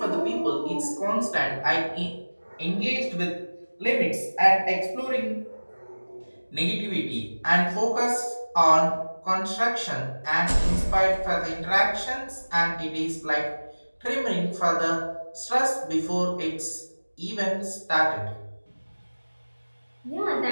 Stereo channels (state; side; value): inverted; both; correlation -1.00